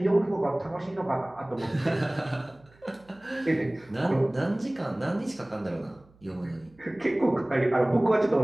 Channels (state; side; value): noise; right; hum, 29 dB below the sound